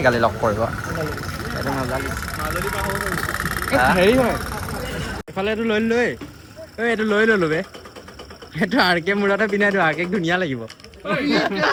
কালি লগ কৰিব এইটো মজা লাগিছে হেৰি হয় এইফালে এইটো লৈ লৈ এইটো লৈ ল'লো বে এইটো আৰকে মূৰতে পিন্ধাই দিওঁ আৰকেক ধুনীয়া লাগিব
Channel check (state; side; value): identical; both; correlation 1.00